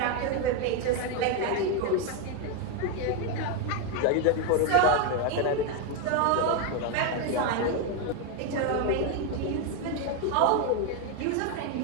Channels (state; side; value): different; both; correlation 0.02